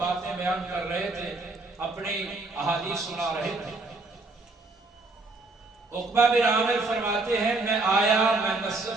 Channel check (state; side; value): quieter; left; 3.3 dB